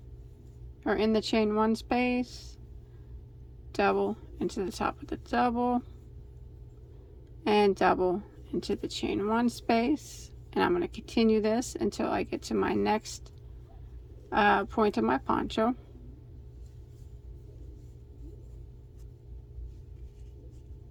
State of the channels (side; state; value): both; identical; correlation 1.00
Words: or in the chain 1 space, double into the top of the double, and double into the chain 1 space. And I'm going to continue this until I get to my next point of my poncho.